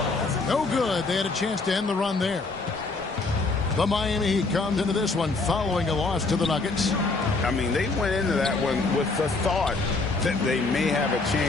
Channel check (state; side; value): quieter; right; 3.6 dB